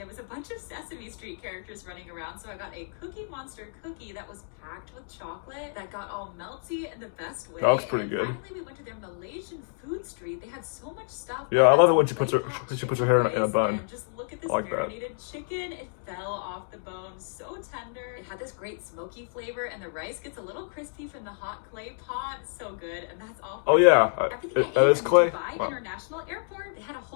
was a bunch of Sesame Street characters running around, so I got a Cookie Monster cookie that was packed with chocolate that got all melty in the best way. That looks pretty and good. Finally, we went to their Malaysian food street. They had so much stuff. Yeah, I love it when she puts her hair in a bun. And just look at this like marinated chicken. It fell off the bone, so tender. It had this great smoky flavor, and the rice gets a little crispy from the hot clay pot. So good, and that's all. Oh yeah, that is clay. Dubai International Airport. They had a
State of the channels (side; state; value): right; silent; digital silence